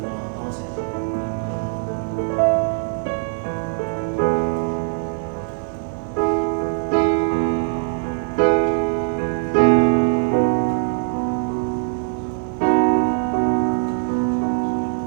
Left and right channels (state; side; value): silent; left; digital silence